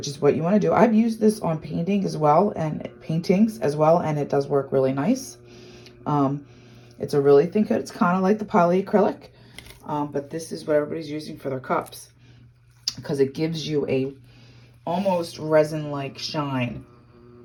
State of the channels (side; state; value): both; identical; correlation 1.00